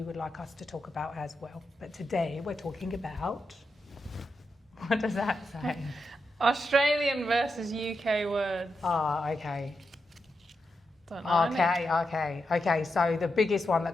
would like us to talk about as well. But today we're talking about, what does that say? Australian versus UK words. Okay. Don't know. Okay. So the biggest one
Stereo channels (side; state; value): both; normal; correlation 0.86